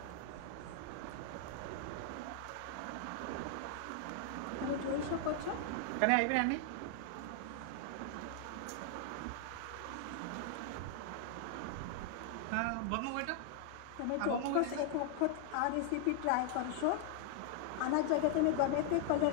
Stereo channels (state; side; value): different; both; correlation 0.00